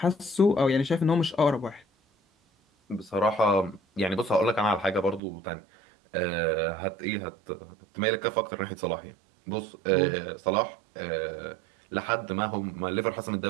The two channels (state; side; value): drops out; left; at 5.2 s